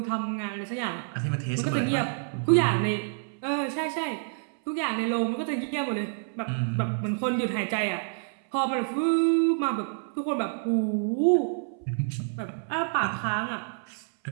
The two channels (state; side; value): silent; left; 59 dB below the other